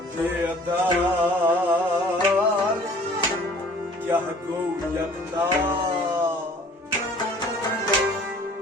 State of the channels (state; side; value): normal; both; correlation 0.51